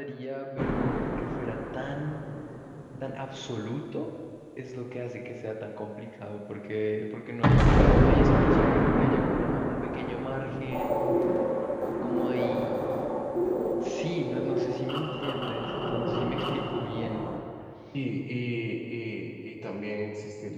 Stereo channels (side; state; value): both; identical; correlation 1.00